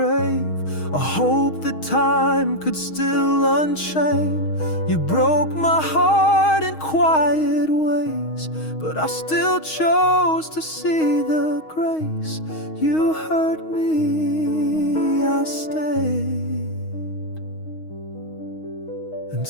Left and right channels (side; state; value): right; late; 6.3 ms